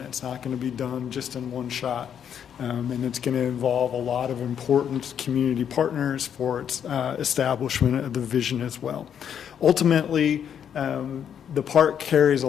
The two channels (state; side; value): quieter; right; 8.6 dB